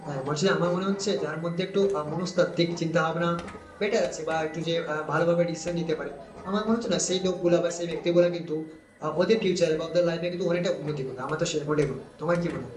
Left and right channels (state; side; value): identical; both; correlation 1.00